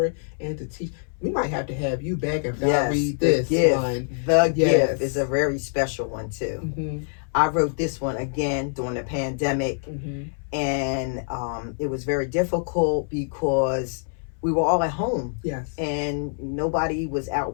and to teach. We might have to have you back if I read this one. The gift is a very special one, too. I wrote this one again during the pandemic, and it was very difficult because we were all at home. Yes. And nobody was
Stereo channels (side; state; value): right; silent; 62 dB below the other